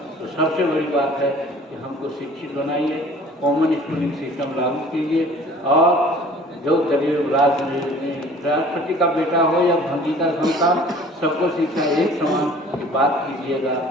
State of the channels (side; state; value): both; normal; correlation 0.49